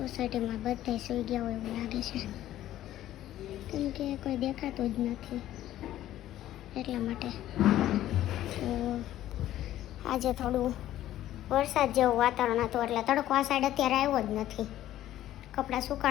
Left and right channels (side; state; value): right; quieter; 13.3 dB